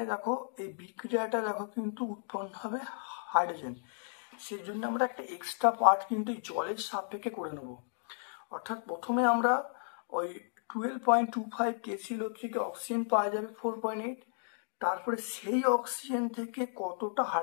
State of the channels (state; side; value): silent; right; digital silence